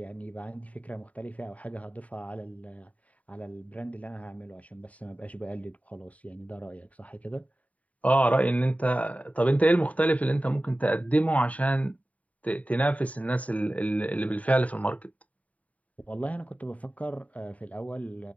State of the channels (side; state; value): right; late; 0.069 ms